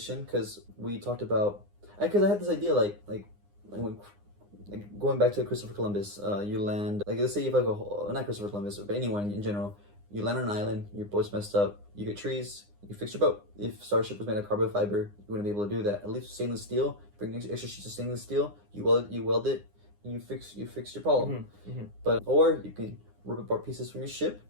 because we talked about. Because I had this idea, like going back to Christopher Columbus, you land, like let's say you have like not Christopher Columbus, but anyone in general, you land on an island, your boat's messed up, you get trees, you fix your boat. If Starship was made of carbon fiber, you wouldn't be able to do that. At least stainless steel, bring extra sheets of stainless steel, you weld it, and you fix your problem. But or you can rip apart pieces from your ship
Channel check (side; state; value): left; late; 9.8 ms